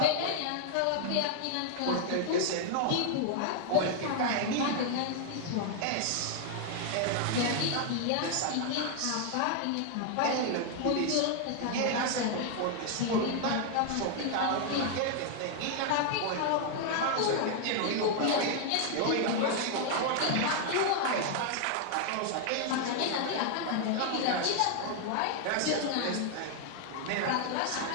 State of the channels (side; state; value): both; different; correlation 0.00